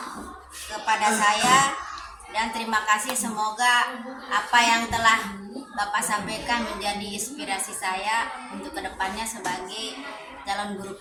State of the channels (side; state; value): both; identical; correlation 1.00